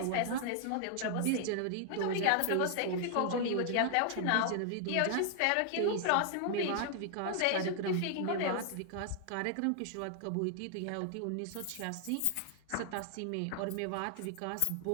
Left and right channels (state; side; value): different; both; correlation 0.00